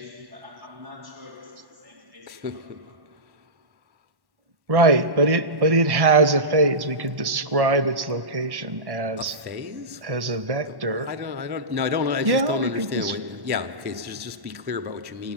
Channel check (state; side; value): late; left; 1.1 ms